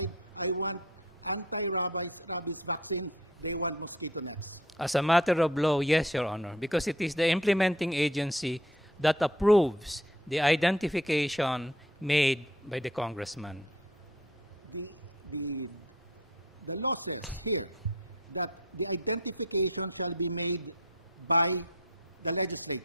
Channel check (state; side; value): normal; both; correlation 0.51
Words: I want anti-rabies vaccine. They want mosquito nets. As a matter of law, yes, Your Honor, because it is the implementing agency that approves the identification made by the congressman. The law says here that the identification shall be made by the